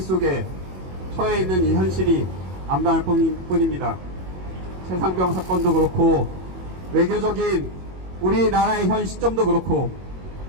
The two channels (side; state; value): left; late; 22 ms